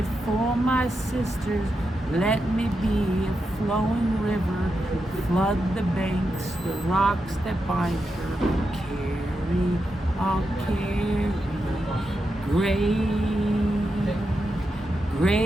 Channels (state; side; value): normal; both; correlation 0.87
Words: for my sisters, let me be a flowing river. Flood the banks, the rocks that bind her. Carry, I'll carry.